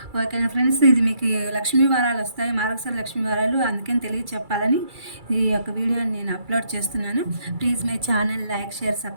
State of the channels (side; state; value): left; late; 2.3 ms